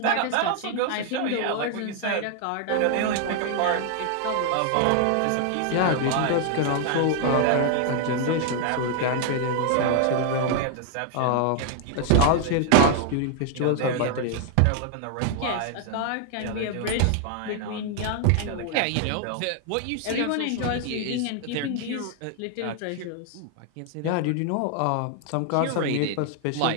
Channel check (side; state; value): both; different; correlation 0.00